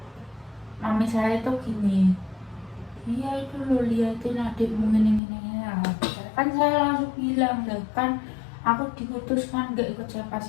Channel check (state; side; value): drops out; right; at 5.2 s